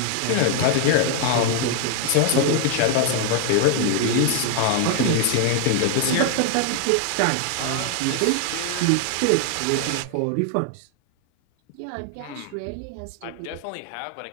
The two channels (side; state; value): both; different; correlation 0.00